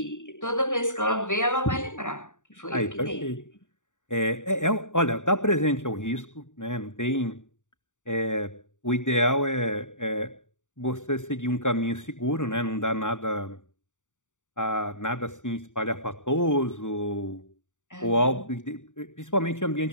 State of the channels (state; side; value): late; right; 0.86 ms